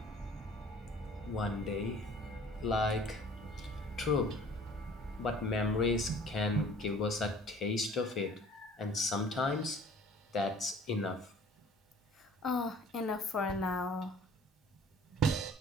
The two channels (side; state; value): both; normal; correlation 0.50